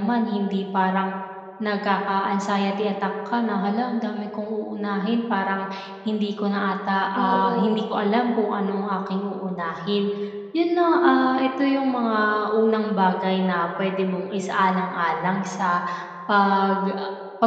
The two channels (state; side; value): identical; both; correlation 1.00